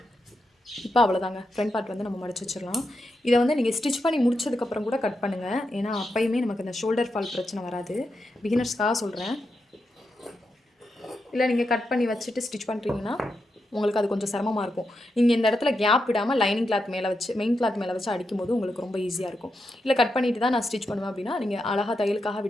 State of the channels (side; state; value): both; normal; correlation 0.85